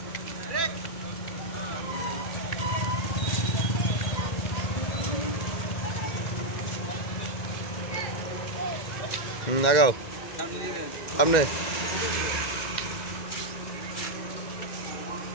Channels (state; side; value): late; right; 1.9 ms